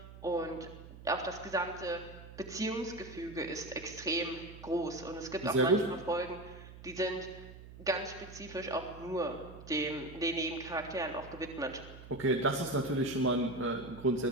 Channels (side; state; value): right; noise; hum, 16 dB below the sound